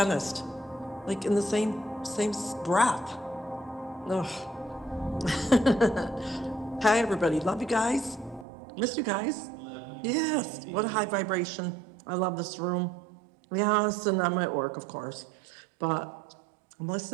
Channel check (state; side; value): drops out; left; at 8.5 s